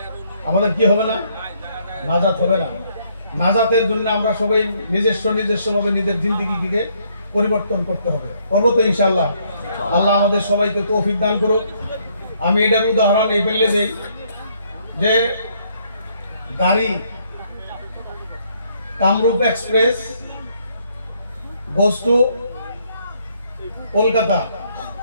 আমাদের কি হবে না? নাজাত হবে না। নাজাতের জন্য আমরা সবাই নিজস্বভাবে নিজের জিন্দেগিকে পরিবর্তন করতে হবে। করবো তো ইনশাআল্লাহ। আল্লাহ আমাদের সবাইকে তৌফিক দান করুক। আমি এটার উদাহরণ এই ফেললে দেই যে গাড়ি Kamrup express goes to Kolkata,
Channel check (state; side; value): inverted; both; correlation -0.69